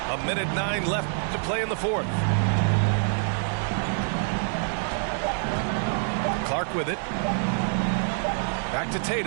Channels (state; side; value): silent; left; 55 dB below the other